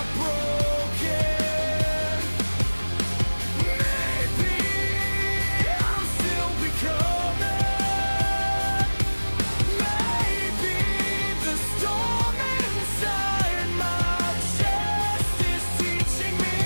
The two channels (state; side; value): inverted; both; correlation -1.00